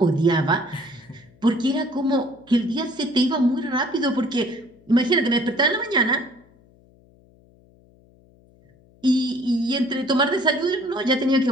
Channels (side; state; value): left; noise; hum, 29 dB below the sound